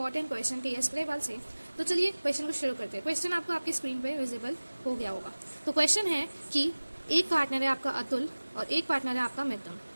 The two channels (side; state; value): both; inverted; correlation -1.00